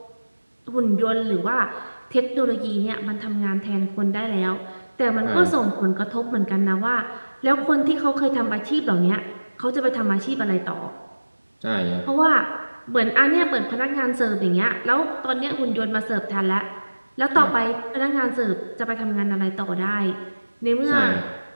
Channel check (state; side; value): inverted; both; correlation -1.00